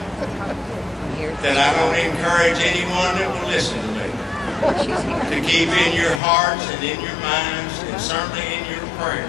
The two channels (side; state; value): right; drops out; at 6.2 s